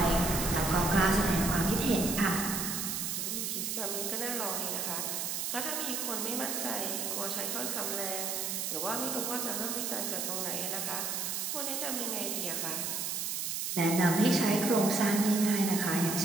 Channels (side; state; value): right; noise; hiss, 1 dB below the sound